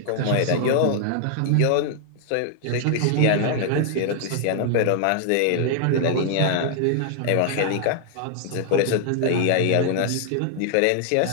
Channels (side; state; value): both; different; correlation -0.01